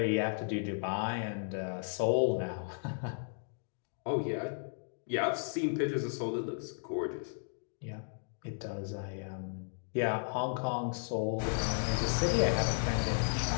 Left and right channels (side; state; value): right; silent; digital silence